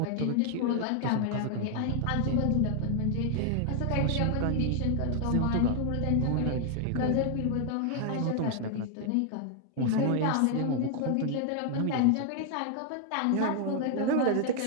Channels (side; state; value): both; different; correlation 0.00